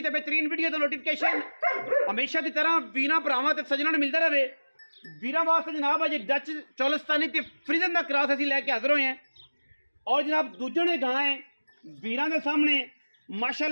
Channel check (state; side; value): inverted; both; correlation -1.00